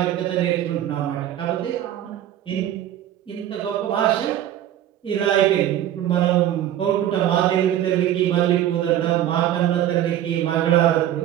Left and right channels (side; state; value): left; quieter; 11.8 dB